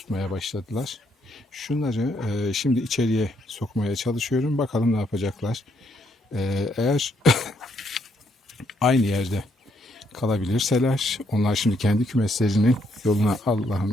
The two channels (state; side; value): normal; both; correlation 0.73